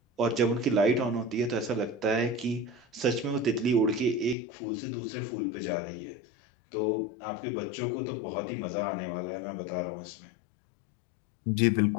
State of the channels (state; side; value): drops out; right; at 4.4 s